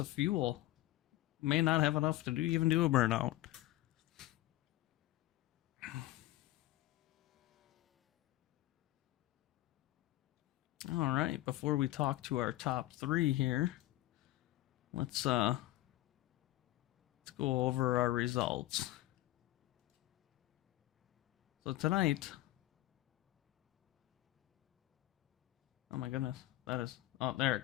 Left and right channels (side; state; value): right; quieter; 16.2 dB